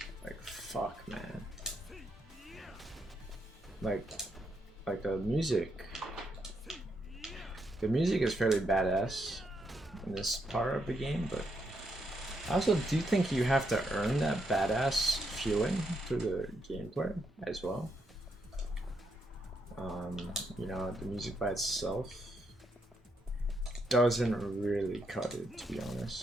fuck, man. Like the music is fairly badass in this part of the game, but I also do think you have to earn that badass feeling through the gameplay as well. You know, the music by itself doesn't really cut it, to be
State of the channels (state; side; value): normal; both; correlation 0.79